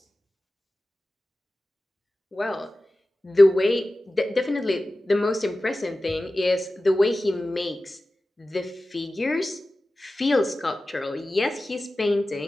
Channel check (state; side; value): normal; both; correlation 0.95